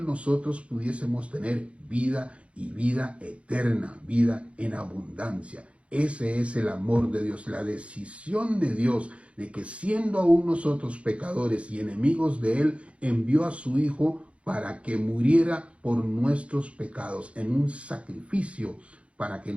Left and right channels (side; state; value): left; late; 0.061 ms